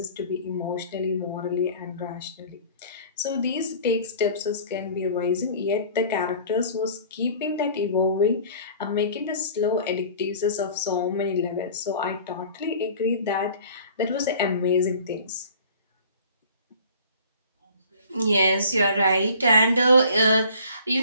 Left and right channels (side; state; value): both; inverted; correlation -0.47